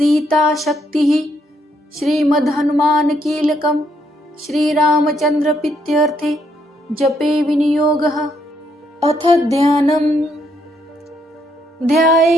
शक्तिः श्रीमद् हनुमान कीलकम् श्रीरामचंद्र प्रीत्यर्थे जपे विनियोगः। अथ ध्यानम्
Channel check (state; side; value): normal; both; correlation 0.73